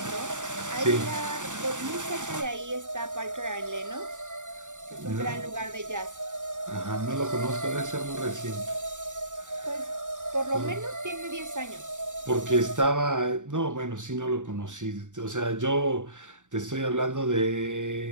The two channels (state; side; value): late; left; 0.86 ms